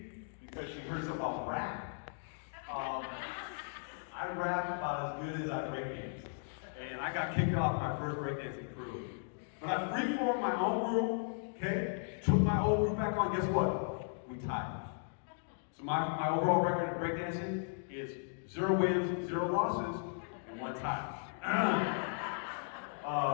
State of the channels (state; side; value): silent; right; digital silence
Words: because she heard something about rap. I rap about as good as I breakdance. And I got kicked off my first breakdancing crew. But I reformed my own group, okay? Took my old group back on, guess what? We tied. So my overall record of breakdancing is 0 wins, 0 losses, and 1 tie.